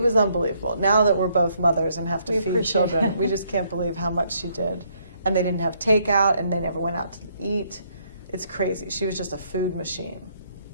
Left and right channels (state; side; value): inverted; both; correlation -0.70